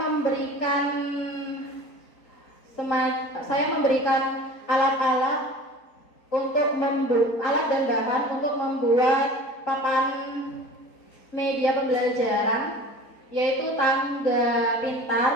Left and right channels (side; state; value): right; late; 3.8 ms